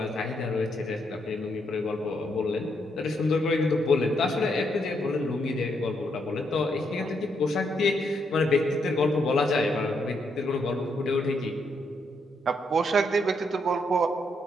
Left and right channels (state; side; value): normal; both; correlation 0.77